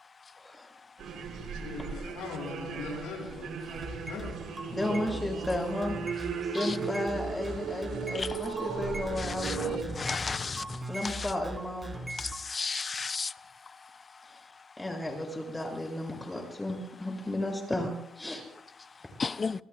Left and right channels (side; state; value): both; normal; correlation 0.82